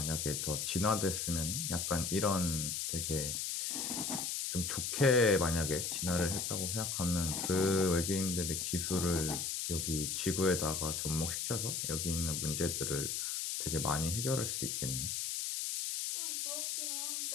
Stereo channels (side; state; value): left; noise; hiss, 1 dB below the sound